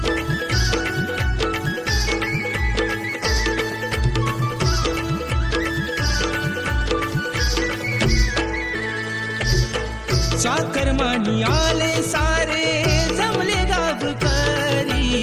चाकरमानी आले सारे जमले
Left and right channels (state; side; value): identical; both; correlation 1.00